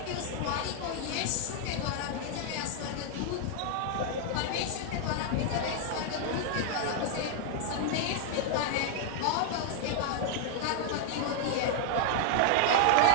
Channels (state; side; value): different; both; correlation 0.00